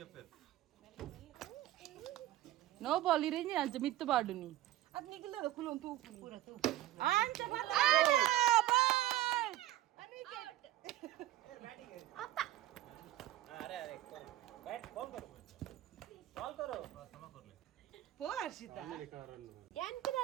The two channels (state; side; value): quieter; left; 14.7 dB